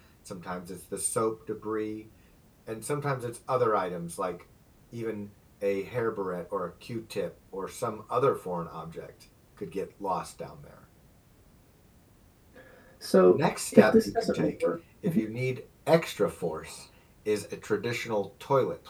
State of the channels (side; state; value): both; identical; correlation 1.00